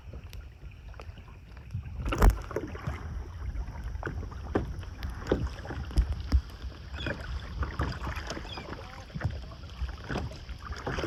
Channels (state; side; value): identical; both; correlation 1.00